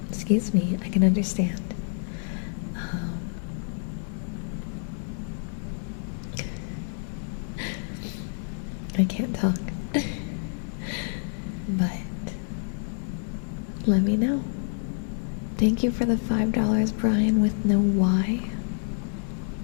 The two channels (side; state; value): right; silent; digital silence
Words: Excuse me, I can understand. I can't talk. But let me know. Thank you for the $5, Brian with no Y.